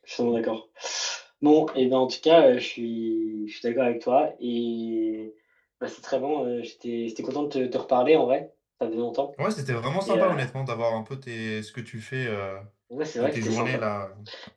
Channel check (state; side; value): identical; both; correlation 1.00